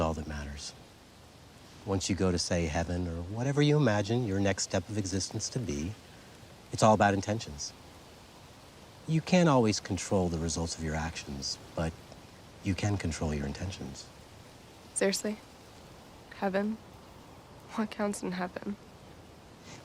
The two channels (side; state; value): both; identical; correlation 1.00